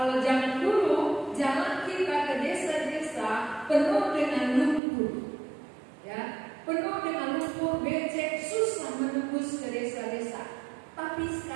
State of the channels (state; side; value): drops out; left; at 4.8 s